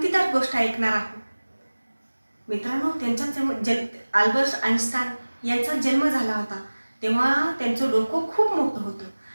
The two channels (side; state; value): both; inverted; correlation -1.00